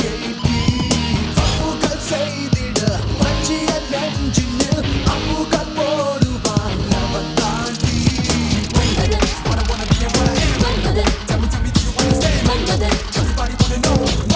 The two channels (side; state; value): both; identical; correlation 1.00